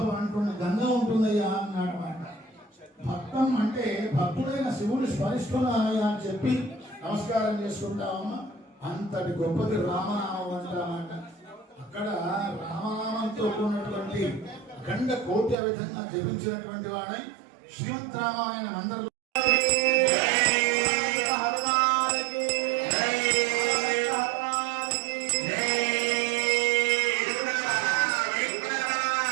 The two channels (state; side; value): drops out; left; at 15.6 s